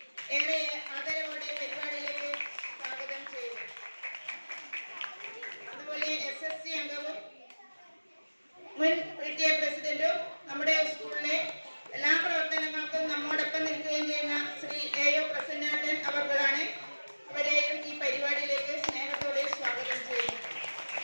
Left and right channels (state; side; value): inverted; both; correlation -1.00